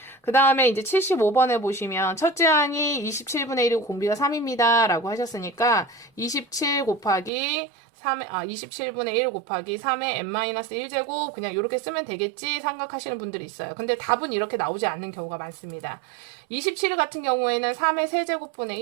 그 다음에 이제 75번에 보시면 첫째 항이 27분의 1이고 공비가 3입니다. 라고 하셨으니까 27 곱하기 27분의 1 곱하기 3의 n-1제곱 그냥 이렇게 쓰면 되겠지 생각하시는 분들이 있어요. 근데 답은 이렇게 나오지 않는 경우가 많습니다. 27 같은 경우에는 3의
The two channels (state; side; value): drops out; left; at 7.3 s